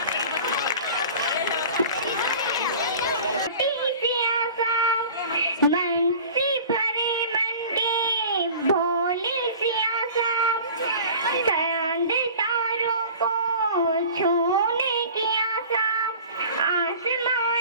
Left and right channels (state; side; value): inverted; both; correlation -0.42